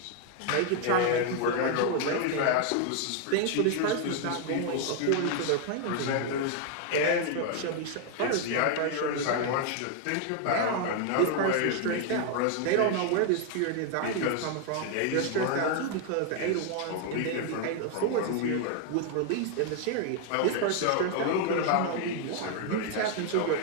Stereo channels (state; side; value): different; both; correlation 0.00